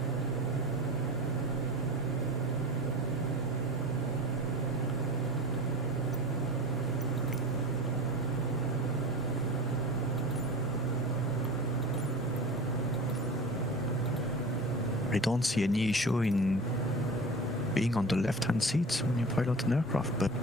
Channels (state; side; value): normal; both; correlation 0.33